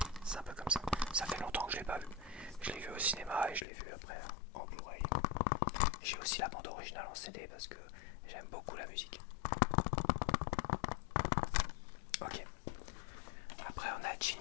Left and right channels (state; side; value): drops out; right; at 3.7 s